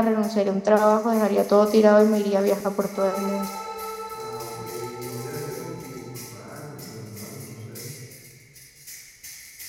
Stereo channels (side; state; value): both; identical; correlation 1.00